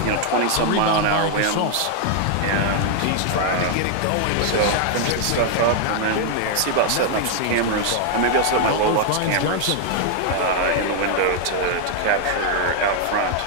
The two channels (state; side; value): different; both; correlation 0.00